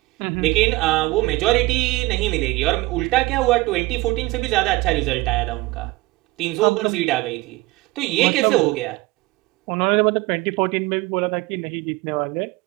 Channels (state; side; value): quieter; left; 21.1 dB